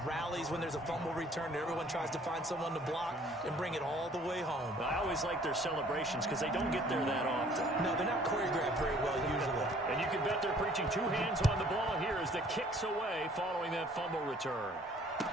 rallies when there's a fumble return and everyone tries to find someone to block and bring it all the way home? I always like their celebrations because they don't get there that often. No, they're not choreographed very well usually. And you can bet they're preaching 2 hands on the ball here as the kick's away following that fumble return.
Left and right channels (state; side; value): normal; both; correlation 0.56